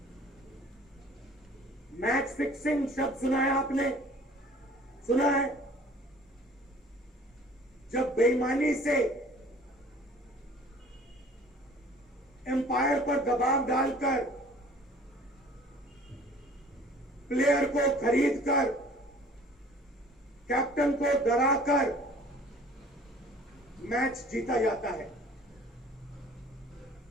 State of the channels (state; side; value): normal; both; correlation 0.50